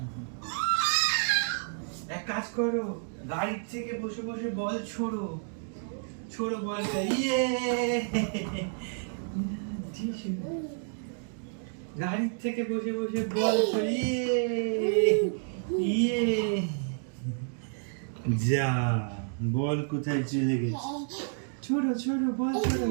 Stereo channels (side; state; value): left; silent; digital silence